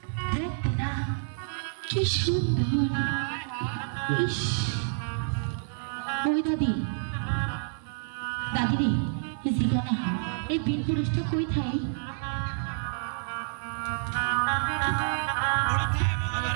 দেখতে না কি সুন্দর। ইস, ওই দাদি, দাদি রে, এই জিগানা এই বীর পুরুষটা কই থাই?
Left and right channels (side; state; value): left; silent; 58 dB below the other